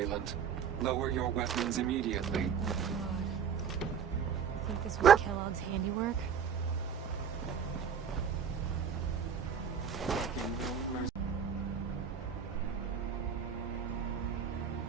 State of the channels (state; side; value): quieter; left; 7.3 dB